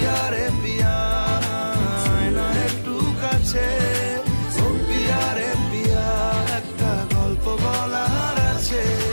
রে পিয়া, আয়না একটু কাছে। ও পিয়া রে পিয়া, একটা গল্প বলার আছে।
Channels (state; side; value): inverted; both; correlation -1.00